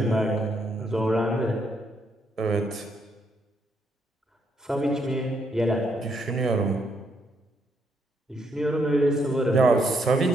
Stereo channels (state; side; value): normal; both; correlation 0.75